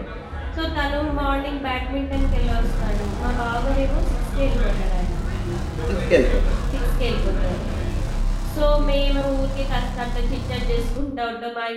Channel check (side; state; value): both; identical; correlation 1.00